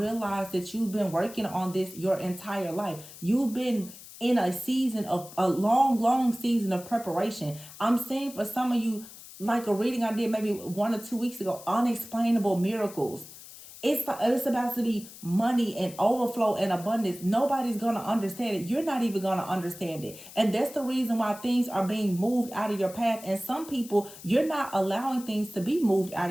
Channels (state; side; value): noise; left; hiss, 17 dB below the sound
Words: that you've been working on this your entire life. You've been in a season of a long season of preparation. I'm saying for some of you, like a reading I did maybe 1 or 2 weeks ago, unexplainable miracles. It's about to be money and overflow and abundance. Nobody's gonna understand it. You're not even gonna understand it. And that's the reason why things are being moved out of your path. And some people, you're not allowing things to be moved out